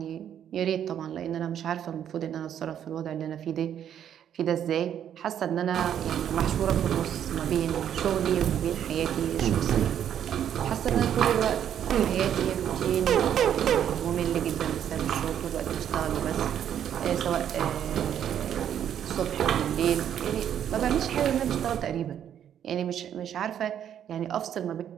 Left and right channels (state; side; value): quieter; left; 9.7 dB